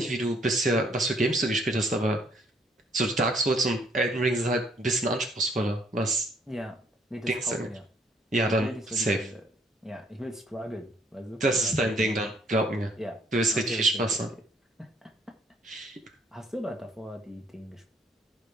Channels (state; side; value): normal; both; correlation 0.65